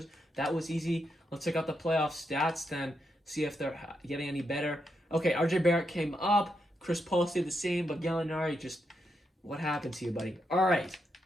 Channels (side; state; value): both; normal; correlation 0.83